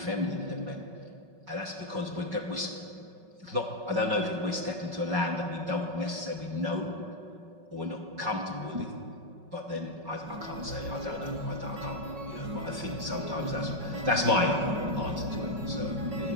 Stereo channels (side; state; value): left; late; 5.3 ms